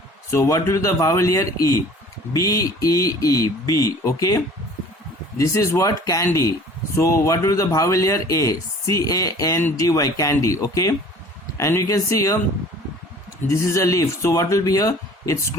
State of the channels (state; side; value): normal; both; correlation 0.48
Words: So what will be the vowel here? E. B-E-E, B. Okay, this is what? Candy. So what will be the vowel here? A. C-A-N-D-Y, candy. Okay, and you can see here this is a leaf. So what will be here? It's